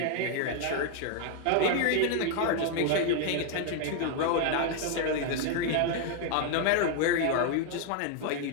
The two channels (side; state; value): both; different; correlation 0.00